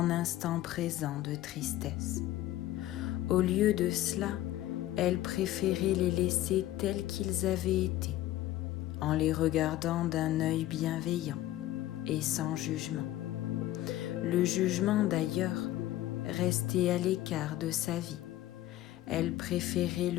instants présents de tristesse. Au lieu de cela, elle préférait les laisser tels qu'ils avaient été, en les regardant d'un œil bienveillant et sans jugement. Le jugement d'ailleurs restait à l'écart de sa vie. Elle préférait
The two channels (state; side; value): quieter; right; 14.8 dB